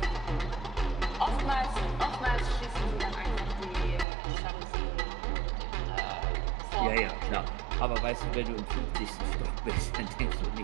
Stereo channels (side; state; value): left; drops out; at 4.0 s